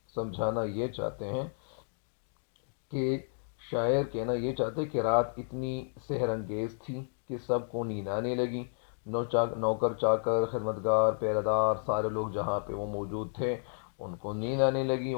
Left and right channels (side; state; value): right; silent; digital silence